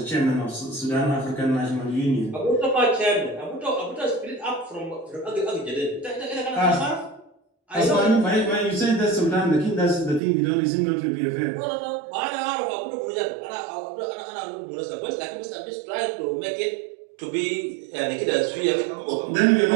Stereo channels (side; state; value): left; drops out; at 10.2 s